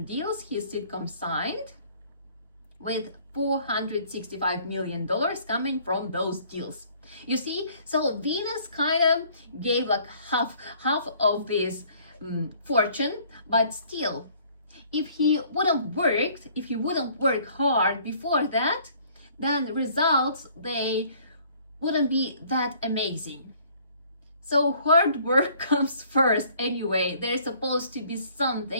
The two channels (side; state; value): both; inverted; correlation -0.58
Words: deals his sitcom signed, with $465 million coming from those deals. You see, so Venus kind of gave like half of this fortune, but still, if he wouldn't work hard before that, then the results, they wouldn't be that amazing. So hard work comes first anyway. There's supposed to be